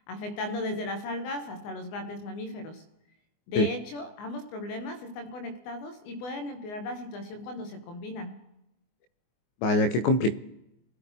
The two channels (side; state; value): right; late; 24 ms